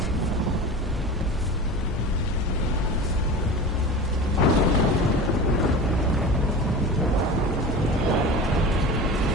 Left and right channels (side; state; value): both; normal; correlation 0.32